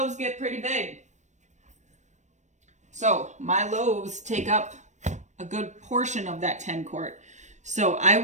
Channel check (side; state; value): left; late; 0.34 ms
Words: get pretty big. So my loaves take up a good portion of that 10 quart. So